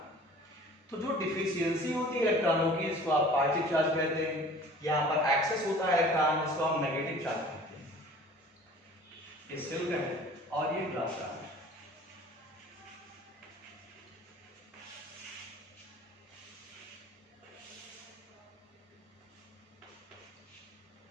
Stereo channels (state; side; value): normal; both; correlation 0.47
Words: तो जो डिफिशियंसी होती है इलेक्ट्रॉनों की, इसको आप पॉजिटिव चार्ज कहते हैं, यहाँ पर एक्सेस होता है इलेक्ट्रॉन, इसको हम नेगेटिव चार्ज कहते हैं। ये सिल्क है और ये ग्लास रॉड है।